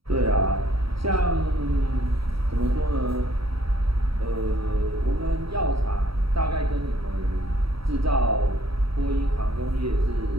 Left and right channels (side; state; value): left; late; 0.75 ms